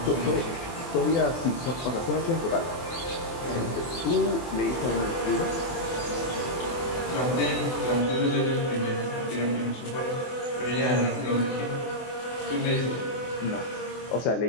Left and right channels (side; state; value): right; late; 24 ms